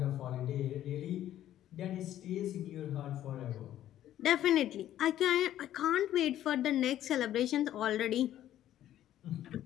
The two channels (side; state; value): right; quieter; 12.3 dB